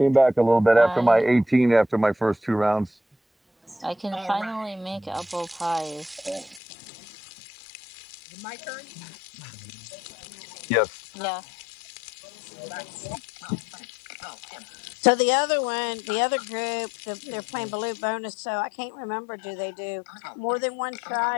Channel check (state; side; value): drops out; right; at 6.6 s